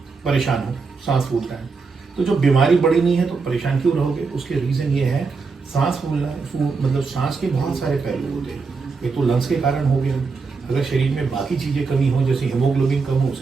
परेशान हो, सांस फूलता है। तो जो बीमारी बड़ी नहीं है तो परेशान क्यों रहोगे? उसके रीज़न ये है, सांस फूलना, मतलब सांस के बहुत सारे पहलू होते हैं। ये तो लंग्स के कारण हो गया, अगर शरीर में बाकी चीज़ें कमी हो, जैसे हीमोग्लोबिन कम हो,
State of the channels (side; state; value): left; quieter; 4.6 dB